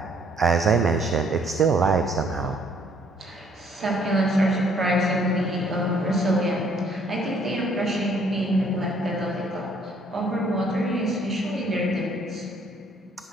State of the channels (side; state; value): both; normal; correlation 0.63